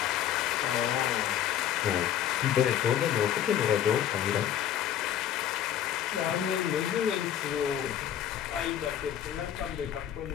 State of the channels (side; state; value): right; quieter; 10.4 dB